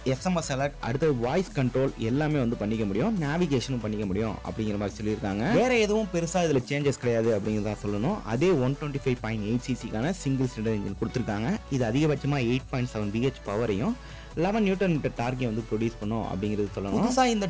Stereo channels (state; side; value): identical; both; correlation 1.00